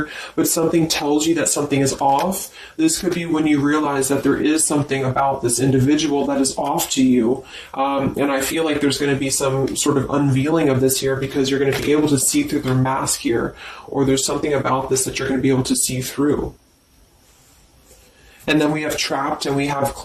but something tells you that something is off. This could be when you realize that there is something about this individual that is off to you. And I feel like there's going to be some sort of unveiling of this here, because you're going to be able to see through their mask here, or there's something about this that you're going to be able to see through. And then we have trapped and we have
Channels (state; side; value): identical; both; correlation 1.00